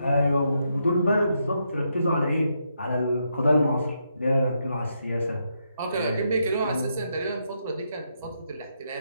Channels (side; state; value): both; inverted; correlation -0.80